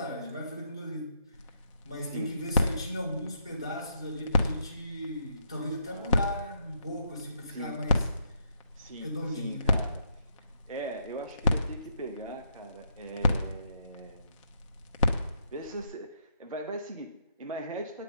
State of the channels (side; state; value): both; inverted; correlation -0.76